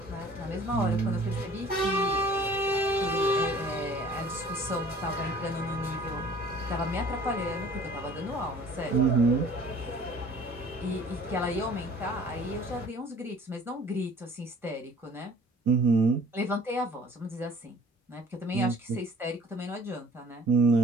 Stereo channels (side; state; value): both; normal; correlation 0.51